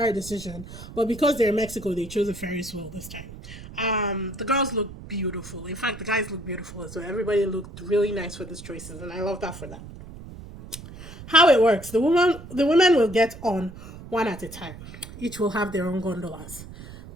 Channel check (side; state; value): right; noise; rumble, 14 dB below the sound